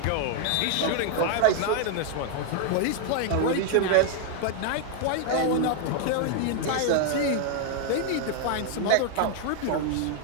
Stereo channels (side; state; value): both; different; correlation 0.00